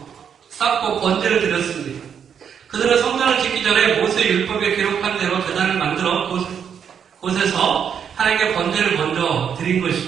쌓고 번제를 드렸습니다. 그들은 성전을 짓기 전에 모세의 율법에 기록한 대로 제단을 만들어 곳에서 하나님께 번제를 먼저 드린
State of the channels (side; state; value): left; quieter; 7.8 dB